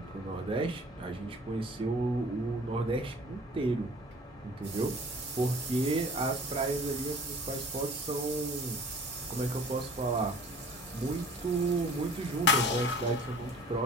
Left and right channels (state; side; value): normal; both; correlation 0.47